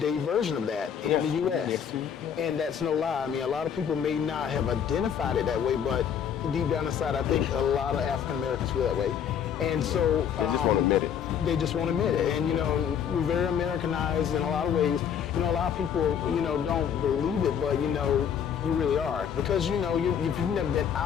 version of that in the U.S. And that's no lie. I mean, a lot of people may not have identified it that way, but deep down inside, I think a lot of African Americans feel that way. And so They just won't admit it. They just won't admit it. And we're very Americanized in a lot of ways. A lot of people don't believe it, but you really are, because if you've never been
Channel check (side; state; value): right; quieter; 8.3 dB